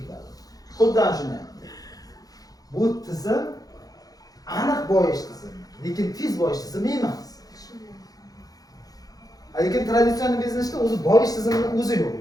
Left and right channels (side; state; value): right; late; 0.18 ms